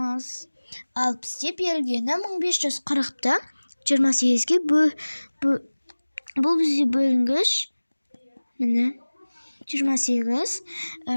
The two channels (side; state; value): both; inverted; correlation -1.00